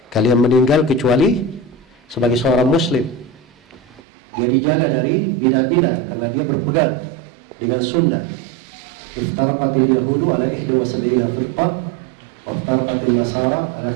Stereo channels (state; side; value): drops out; left; at 4.0 s